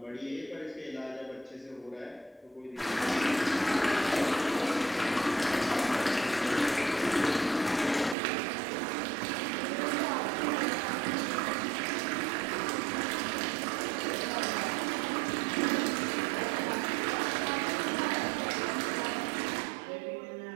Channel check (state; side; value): drops out; left; at 8.2 s